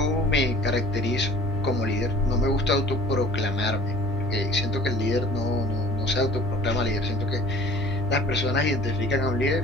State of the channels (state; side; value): normal; both; correlation 0.48